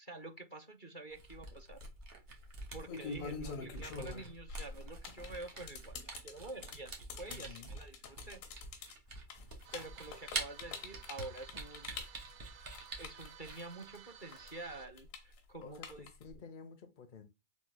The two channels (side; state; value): right; late; 2.3 ms